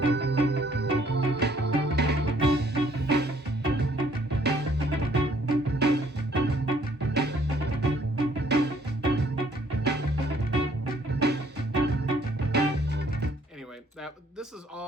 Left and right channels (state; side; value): normal; both; correlation 0.63